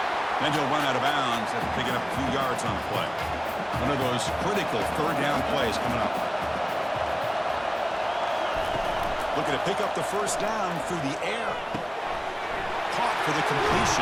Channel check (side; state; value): both; identical; correlation 1.00